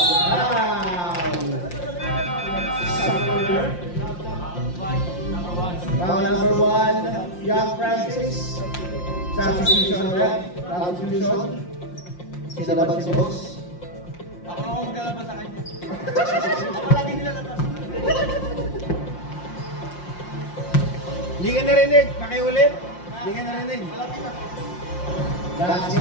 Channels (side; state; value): right; late; 5.7 ms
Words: Round number 1, Young Francis. Substitution rep. Substitution. Sinabag si boss. Ako na ako maglalabas sa kanya. Ako lagi nilalabas. Hindi ka narinig. Pakiulit. Hindi ka narinig.